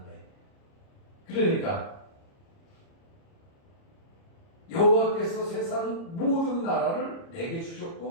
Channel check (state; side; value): late; right; 30 ms